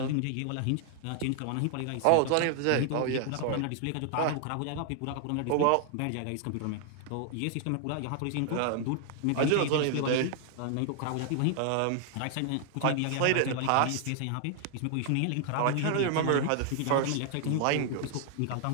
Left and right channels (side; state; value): both; different; correlation 0.00